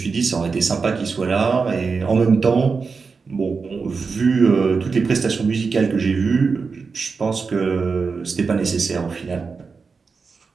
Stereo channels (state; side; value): quieter; left; 4.9 dB